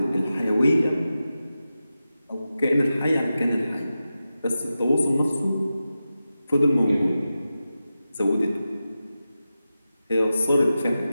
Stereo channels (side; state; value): both; inverted; correlation -0.92